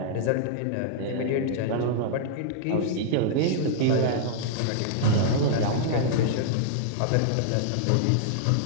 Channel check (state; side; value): different; both; correlation -0.01